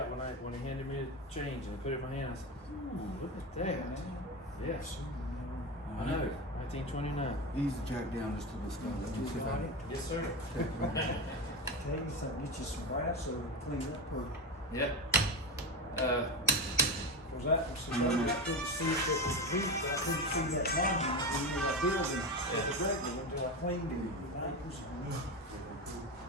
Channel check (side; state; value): both; normal; correlation 0.18